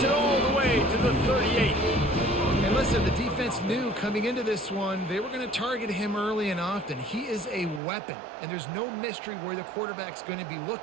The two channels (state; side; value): drops out; left; at 7.8 s